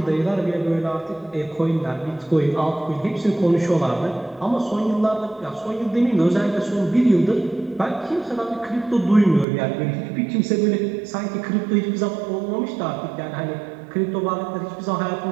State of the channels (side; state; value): left; drops out; at 9.5 s